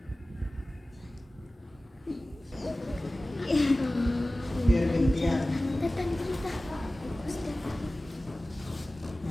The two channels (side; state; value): both; normal; correlation 0.97